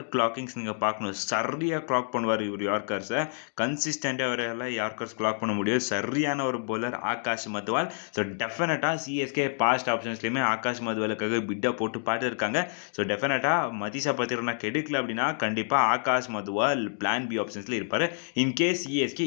கிளாக்கிங்ஸ் நீங்கள் பார்க்கணும். சரியாக கிளாக் பண்ணுவார் இவர் யார்க்கர்ஸை. கன்சிஸ்டண்ட்டாக அவரால் யார்க்கர்ஸ் கிளாக் பண்ண முடியும். சரியான ஒரு பவுலர் ஆகாஷ் மத்வால். ஸோ டெஃபினட்டாக சிஎஸ்கே பாஸ்ட் ஆப்ஷன்ஸ்லேயுமே ஆகாஷ் மத்வாலுக்காக பிட்டை போட்டு பார்த்துருக்காங்க. ஸோ டெஃபினட்டாக மதீஷா பத்திரனா கெடுக்கல அப்படின்னா கண்டிப்பாக ஆகாஷ் மத்வால் பிளான் பி ஆப்ஷன்ஸில் இருப்பார். இன்கேஸ் சிஎஸ்கே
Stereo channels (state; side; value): silent; right; digital silence